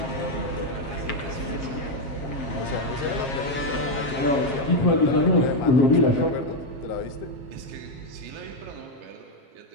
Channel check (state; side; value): late; right; 7.5 ms